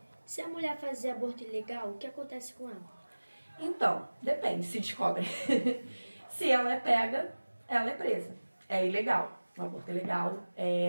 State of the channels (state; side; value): inverted; both; correlation -1.00